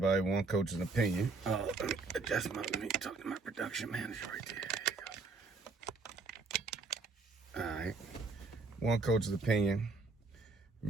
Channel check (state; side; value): quieter; left; 3.9 dB